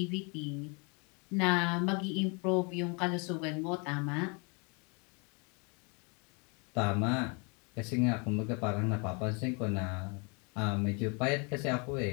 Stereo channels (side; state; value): right; quieter; 33.2 dB